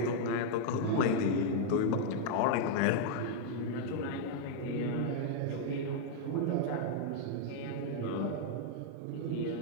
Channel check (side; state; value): both; different; correlation -0.01